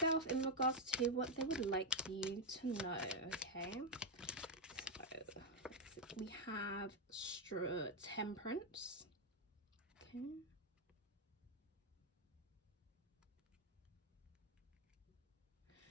in regards to what they would like you to know, okay? So we have Temperance, okay?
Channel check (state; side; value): normal; both; correlation 0.02